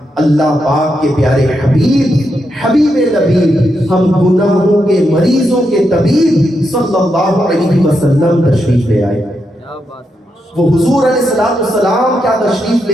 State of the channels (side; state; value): both; normal; correlation 0.83